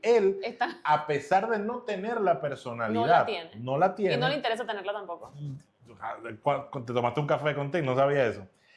a pesar de no tener la personalidad, no la tiene. Y no le interesa tenerla tampoco. Te tomaste un café contigo, no sabía eso.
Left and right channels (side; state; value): both; identical; correlation 1.00